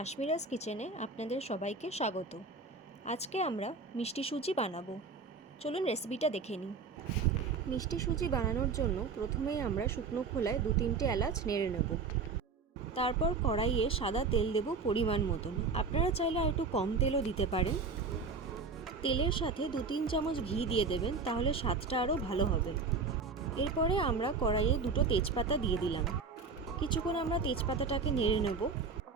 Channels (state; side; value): quieter; left; 4.6 dB